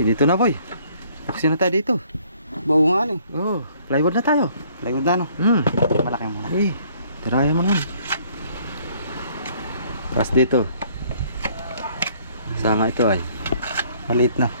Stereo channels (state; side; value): inverted; both; correlation -0.61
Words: dito na boy. Aksi na tayo dito. Bawo nga eh. Oh, plywood na tayo. Plywood na no? Malaki mo na. Eh, tirayan mo naman. Tapos dito. Sama ito ay. Maliit na.